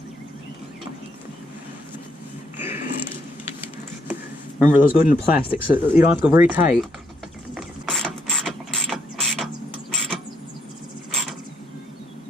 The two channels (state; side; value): normal; both; correlation 0.75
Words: Remember, those go into plastic, so you don't have to go very tight.